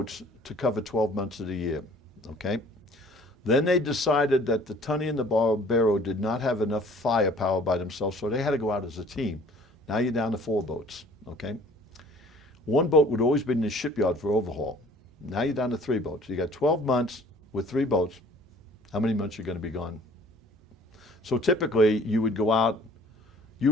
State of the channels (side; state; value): both; normal; correlation 0.52